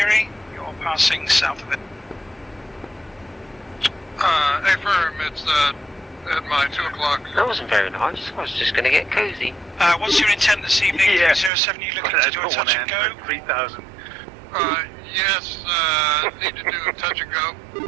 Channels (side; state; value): left; drops out; at 11.5 s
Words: You're passing south of it. Affirm, it's at my 2 o'clock. That wasn't very nice. I was just going to get cozy. What's your intent this evening? Yeah. 307, you looking to do a touch and go? 3,000. Yes, need to do a touch and go.